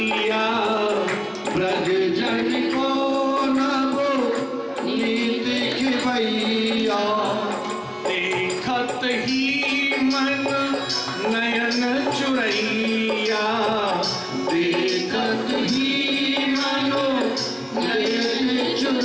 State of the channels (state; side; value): identical; both; correlation 1.00